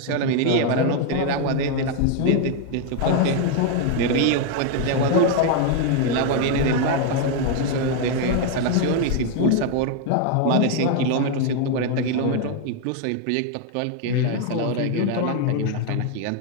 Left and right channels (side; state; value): both; different; correlation 0.01